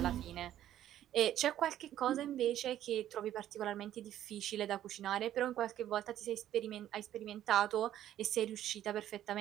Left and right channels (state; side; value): quieter; left; 11.9 dB